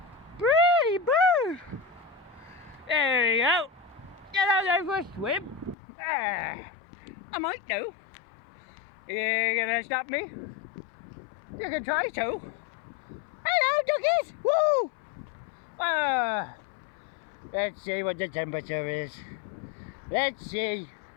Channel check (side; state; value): right; drops out; at 5.8 s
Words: pretty bird. There we go. Can I go for a swim? I might do. You gonna stop me? You can try to. Hello, duckies. Woo! Let's see what the temperature is. Let's see.